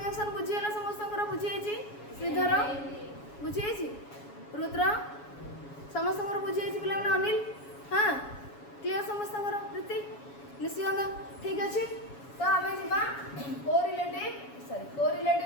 बुझीला समस्त बुझी श्रीधर बुझी रुद्र समस्त बुझी पे अनिल हाँ क्लीयर समस्त प्रीति निशिगंधा ठीक अच्छे तो आम जा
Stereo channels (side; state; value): right; late; 7.2 ms